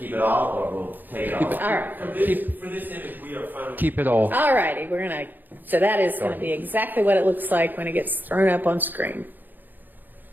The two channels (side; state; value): left; late; 0.088 ms